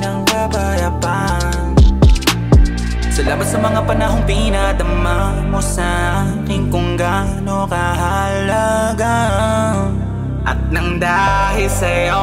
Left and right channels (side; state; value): both; identical; correlation 1.00